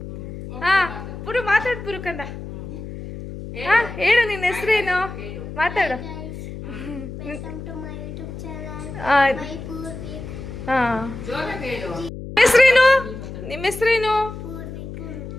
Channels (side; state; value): left; noise; hum, 10 dB below the sound